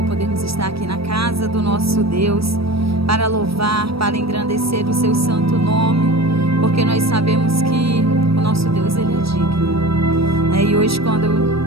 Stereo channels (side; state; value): left; late; 0.76 ms